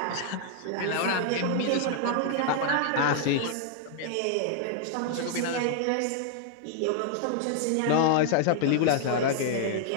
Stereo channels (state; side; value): different; both; correlation 0.00